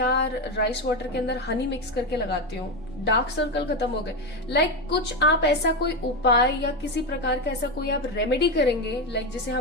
राइस वाटर के अंदर हनी मिक्स करके लगाती हूँ, डार्क सर्कल खत्म हो गए। लाइक कुछ आप ऐसा कोई उपाय या किसी प्रकार का ऐसा कोई आप रेमेडी करेंगे, लाइक जिसे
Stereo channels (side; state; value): both; normal; correlation 0.12